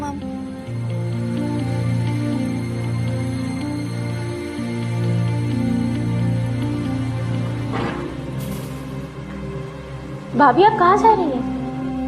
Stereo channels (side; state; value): both; identical; correlation 1.00